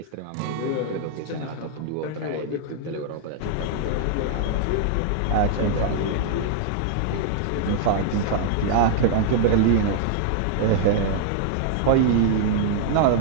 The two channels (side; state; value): both; different; correlation -0.01